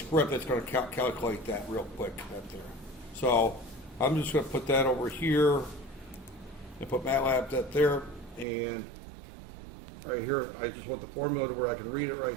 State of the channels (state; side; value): drops out; left; at 8.5 s